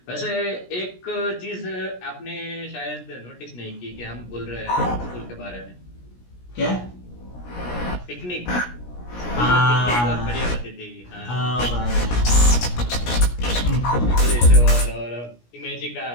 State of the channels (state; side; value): late; right; 17 ms